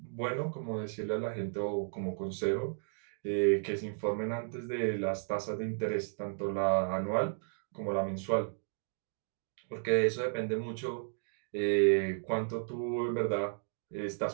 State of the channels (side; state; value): left; silent; digital silence